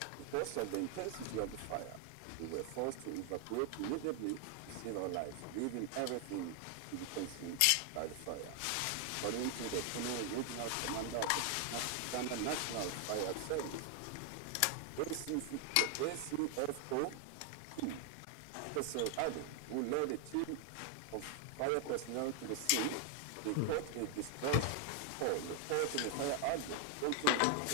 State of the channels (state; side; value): different; both; correlation 0.00